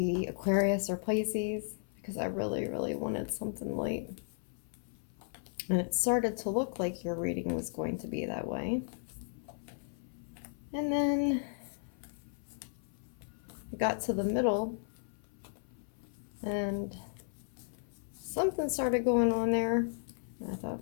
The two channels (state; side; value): silent; right; 54 dB below the other